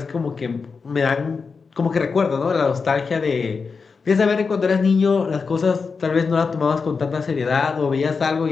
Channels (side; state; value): right; quieter; 5.0 dB